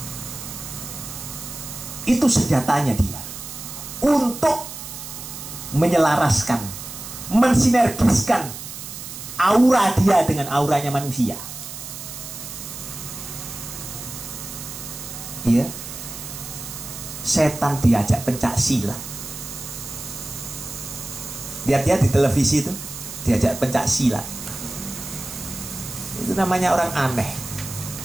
Itu senjatanya dia, untuk menyelaraskan, mensinergiskan aura dia dengan auranya manusia. Ya, setan diajak pencak silat. Lihat-lihat di televisi itu, diajak pencak silat. Itu namanya orang aneh.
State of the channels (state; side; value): noise; right; hiss, 10 dB below the sound